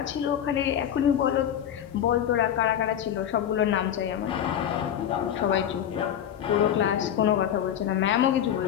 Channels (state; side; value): quieter; right; 9.9 dB